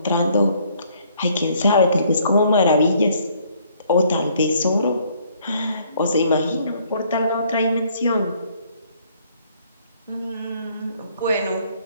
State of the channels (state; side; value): inverted; both; correlation -0.63